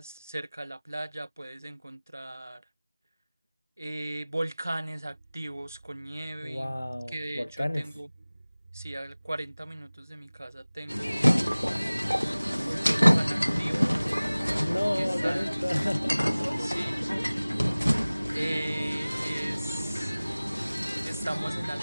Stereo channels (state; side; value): inverted; both; correlation -0.99